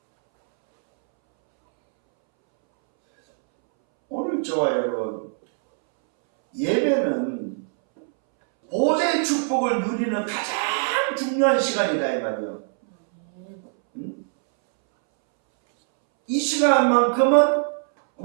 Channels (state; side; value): silent; left; 64 dB below the other